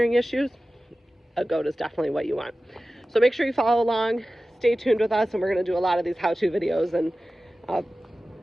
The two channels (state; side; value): normal; both; correlation 0.95